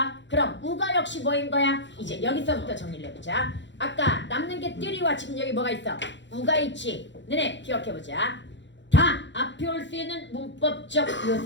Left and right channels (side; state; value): right; late; 0.53 ms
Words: 그럼 우가 역시 뭐인 거야? 이제 여기서부터 정리를 해보자. 아까 남는 게 띠리와 지금 여기 뭐가 있어? 우가 있지. 너네 기억해보자. 다 앞에 올 수 있는 문법적